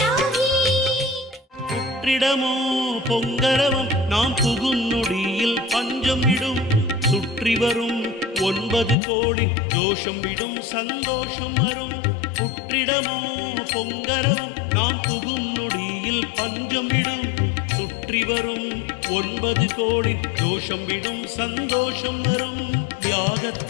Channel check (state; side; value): drops out; right; at 9.0 s